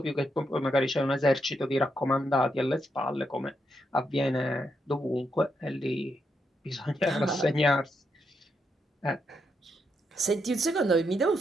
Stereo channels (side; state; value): both; normal; correlation 0.81